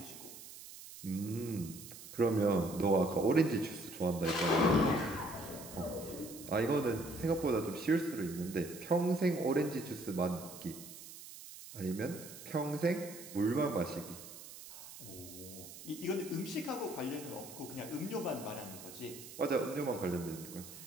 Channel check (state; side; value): noise; right; hiss, 14 dB below the sound